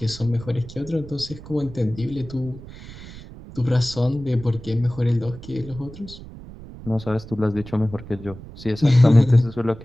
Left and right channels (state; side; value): noise; right; rumble, 15 dB below the sound